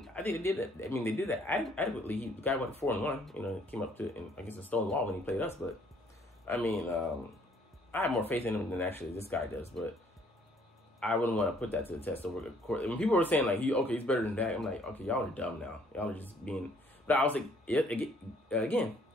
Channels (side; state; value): both; normal; correlation 0.62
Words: I think they did that. I mean, they did that adequately. The guy went 4-1. Came up to against a stone wall when he played us. But I mean, I have more faith in him than actually this guy does. But I wouldn't want to put that to the test over the court. When people were saying like, he's better than that, I'm like, okay, y'all are dumb now. Y'all are just being. But I was like, again,